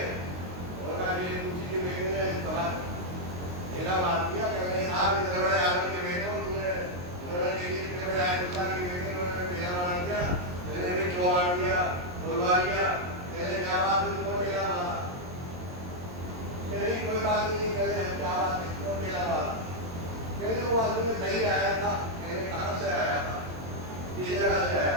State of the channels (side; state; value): left; late; 22 ms